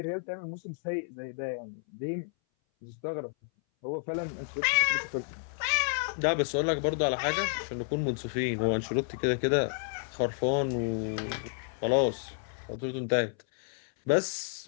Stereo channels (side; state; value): right; silent; 57 dB below the other